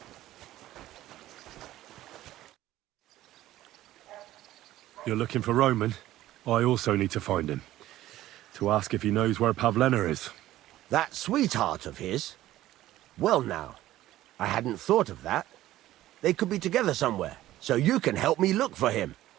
You're looking for Roman? I also need to find him. To ask if he knows where Pavlena is. That sweetheart of his? Well now, I hadn't thought of that. They could be together somewhere, so you can help me look for him.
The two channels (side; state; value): left; quieter; 14.7 dB